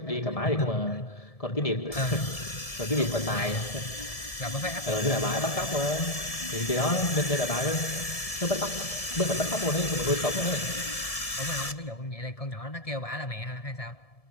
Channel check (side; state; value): right; late; 1.7 ms